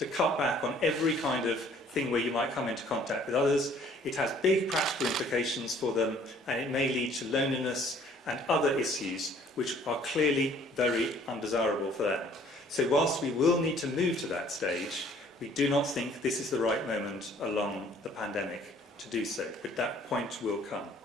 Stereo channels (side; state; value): both; normal; correlation 0.57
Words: cut back on every kind of thing where you might come into contact with others, it has big practical implications for them, and it may lead to loneliness and other issues which are clearly very undesirable for them. So whilst we will need to move to that stage, we do not think this is the right moment along the pandemic to do so, but that point will come.